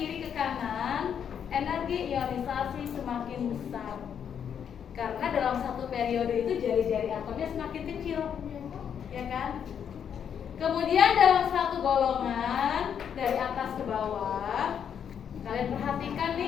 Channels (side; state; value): right; quieter; 8.1 dB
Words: ke kanan, energi ionisasi semakin besar. Karena dalam satu periode itu jari-jari atomnya semakin kecil, ya kan? Kemudian dalam satu golongan dari atas ke bawah, kalian perhatikan